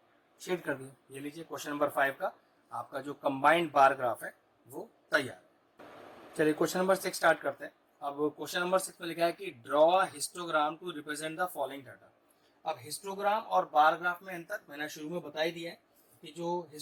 शेड कर दिया। ये लीजिए क्वेश्चन नंबर 5 का आपका जो कंबाइंड बार ग्राफ है वो तैयार है। चलिए क्वेश्चन नंबर 6 स्टार्ट करते हैं। अब क्वेश्चन नंबर 6 में लिखा है कि draw histogram to represent the following data. अब हिस्टोग्राम और बार ग्राफ में अंतर मैंने शुरू में बता ही दिया है कि जो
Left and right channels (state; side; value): identical; both; correlation 1.00